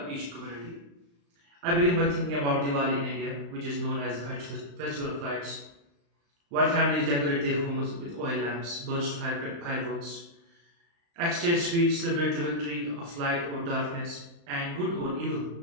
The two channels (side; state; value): left; late; 35 ms